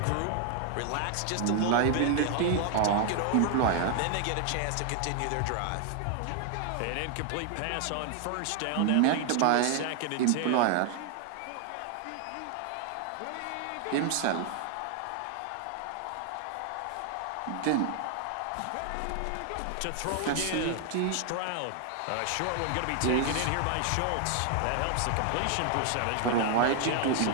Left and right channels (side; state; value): both; different; correlation 0.00